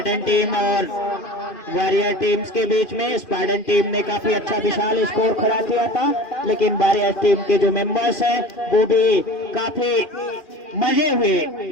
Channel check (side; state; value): right; late; 2.5 ms